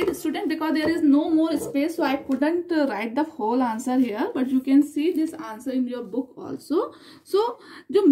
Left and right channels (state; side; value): identical; both; correlation 1.00